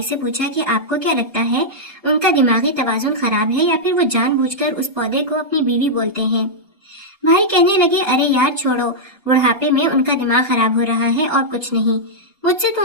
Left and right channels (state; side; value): normal; both; correlation -0.07